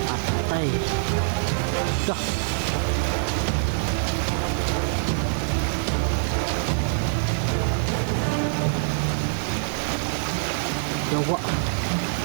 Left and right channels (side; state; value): left; silent; 62 dB below the other